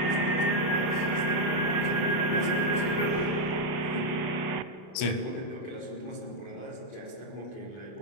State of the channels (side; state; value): right; late; 32 ms